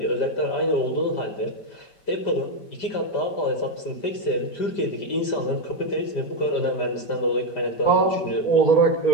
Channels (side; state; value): right; late; 5.1 ms